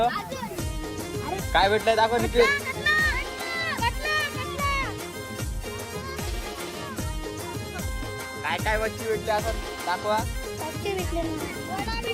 काय भेटलंय दाखव निखिल. काय काय मच्छी भेटली असं दाखवा.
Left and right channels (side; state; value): both; identical; correlation 1.00